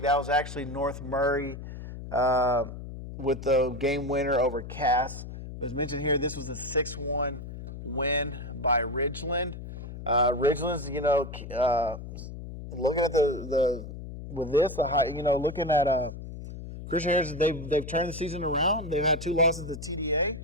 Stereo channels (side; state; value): left; noise; hum, 10 dB below the sound